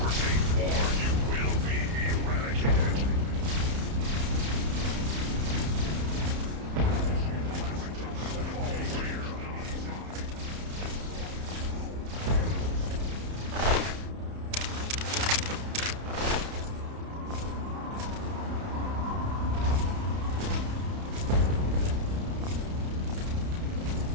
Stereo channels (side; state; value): left; late; 31 ms